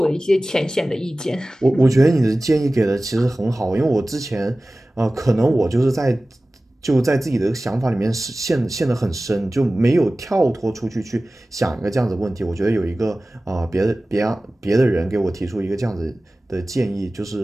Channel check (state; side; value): normal; both; correlation 0.97